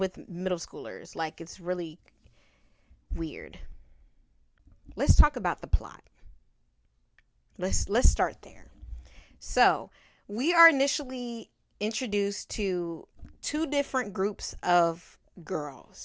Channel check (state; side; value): identical; both; correlation 1.00